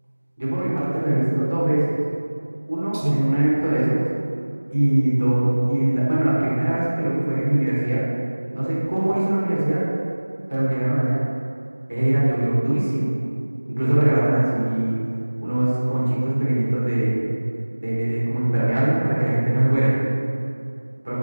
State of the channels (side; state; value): both; inverted; correlation -1.00